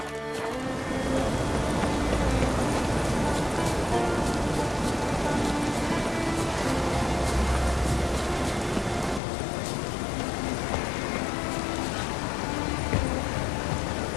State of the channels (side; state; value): right; drops out; at 9.2 s